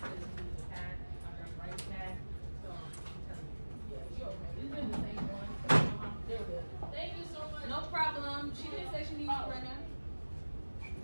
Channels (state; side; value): inverted; both; correlation -1.00